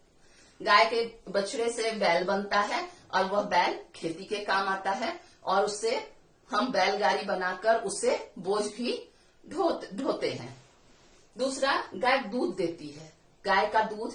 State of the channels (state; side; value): identical; both; correlation 1.00